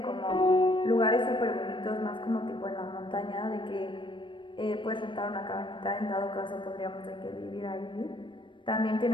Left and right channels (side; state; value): right; late; 0.24 ms